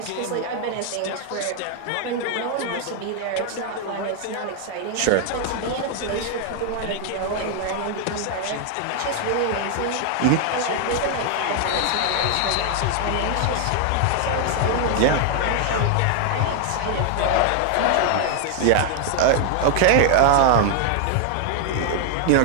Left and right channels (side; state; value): both; different; correlation 0.00